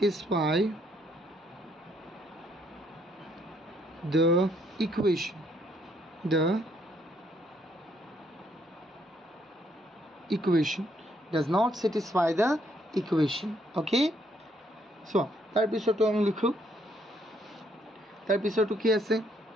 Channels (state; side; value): normal; both; correlation 0.70